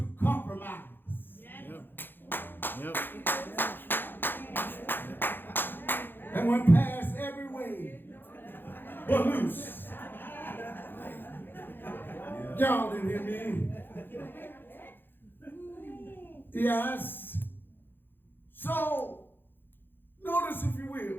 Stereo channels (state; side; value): late; right; 0.098 ms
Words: compromise. Yep. And when past every way but loose. Y'all didn't hear me. Yes. So, notice if you